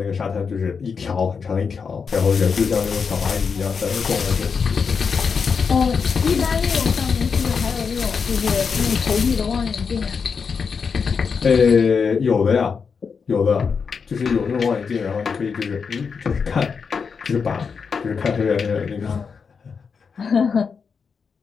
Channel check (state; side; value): quieter; right; 5.8 dB